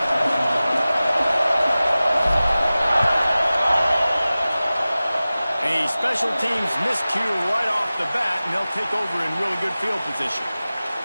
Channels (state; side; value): inverted; both; correlation -0.97